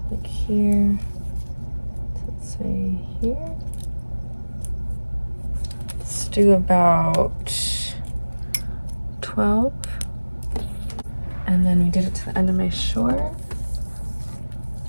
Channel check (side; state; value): both; inverted; correlation -1.00